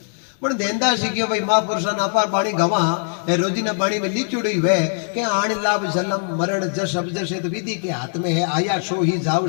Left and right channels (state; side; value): silent; right; digital silence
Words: पण देनदासी क्यों भाई महापुरुषा ना पार बाणी गवा ए रोजीना बाणी में लिचुड़ी हुए के आण लाभ जलम मरण जस अब जसे तो विधि के हाथ में है आया सो ही